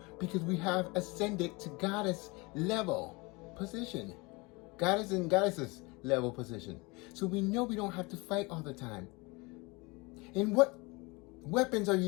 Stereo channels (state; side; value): quieter; right; 26.1 dB